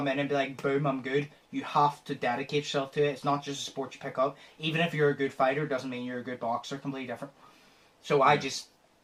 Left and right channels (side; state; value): both; identical; correlation 1.00